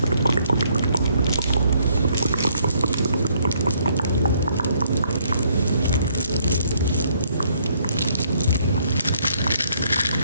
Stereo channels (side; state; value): both; inverted; correlation -0.68